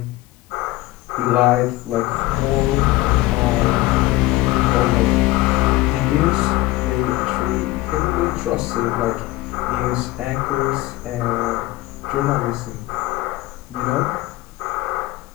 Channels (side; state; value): right; quieter; 18.6 dB